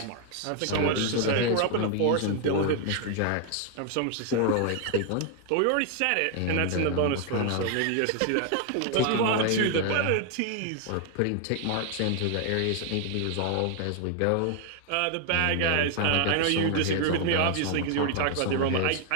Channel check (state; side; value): different; both; correlation 0.00